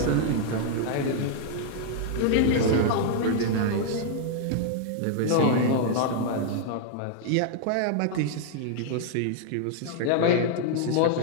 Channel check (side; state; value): both; different; correlation -0.01